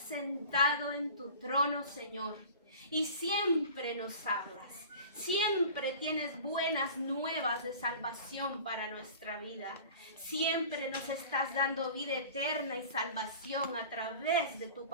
en tu trono, Señor, y siempre nos hablas. Siempre tienes buenas nuevas de salvación para nuestra vida. Siempre nos estás dando vida eterna y salvación a través de tu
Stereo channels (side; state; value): both; inverted; correlation -0.40